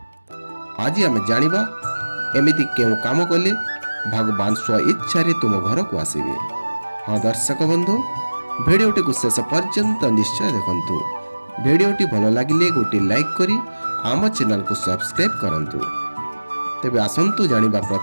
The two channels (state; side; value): inverted; both; correlation -1.00